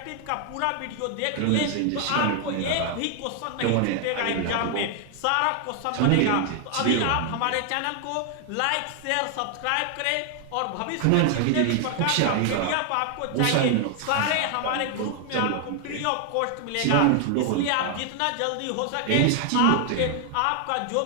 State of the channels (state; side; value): different; both; correlation 0.00